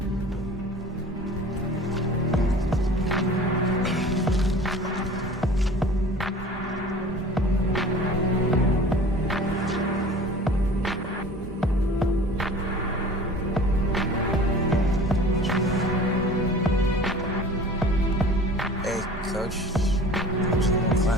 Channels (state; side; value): normal; both; correlation 0.43